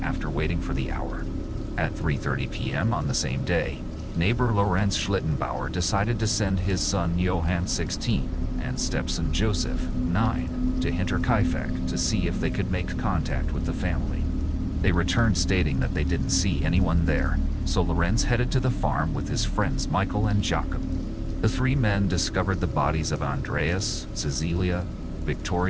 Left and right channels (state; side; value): identical; both; correlation 1.00